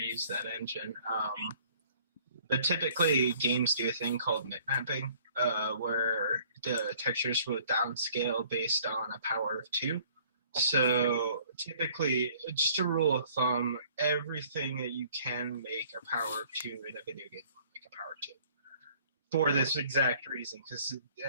that engine. But typically, games do a thing called bitmapping, where the textures will downscale based on a power of 2. So typically, just a rule of thumb, everything that you can make a power of 2 in a video game will make a power of 2. For this exact reason, because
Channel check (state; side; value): inverted; both; correlation -0.56